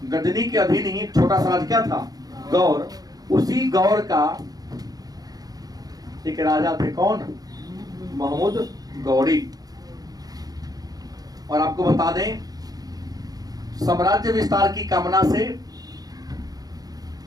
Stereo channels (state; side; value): late; left; 0.18 ms